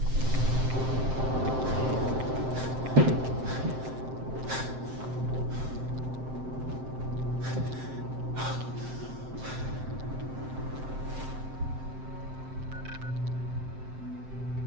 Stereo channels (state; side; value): late; left; 7.7 ms